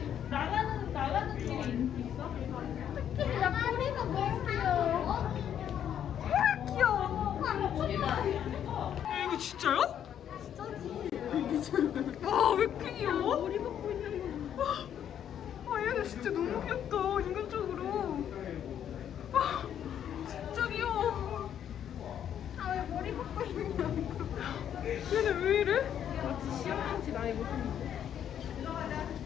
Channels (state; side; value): quieter; right; 9.6 dB